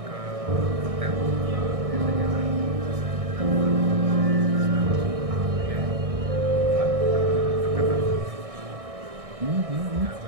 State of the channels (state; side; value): late; left; 1.6 ms